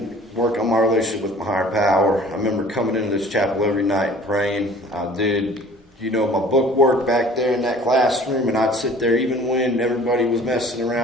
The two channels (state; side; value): normal; both; correlation 0.48